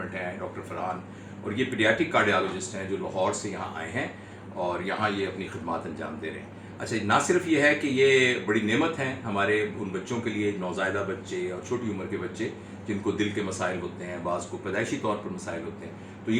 हैं, डॉक्टर फरहान, और ये पीडियाट्रिक कार्डियोलॉजिस्ट हैं जो लाहौर से यहाँ आए हैं और यहाँ ये अपनी खिदमत अंजाम दे रहे हैं। अच्छा, ना सिर्फ ये है कि ये बड़ी नेमत हैं हमारे उन बच्चों के लिए, नौज़ायदा बच्चे और छोटी उम्र के बच्चे जिनको दिल के मसाइल होते हैं, बाज़ को पैदाइशी तौर पर मसाइल होते हैं, तो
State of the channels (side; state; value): both; identical; correlation 1.00